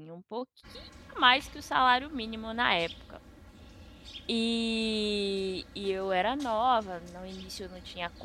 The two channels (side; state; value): both; identical; correlation 1.00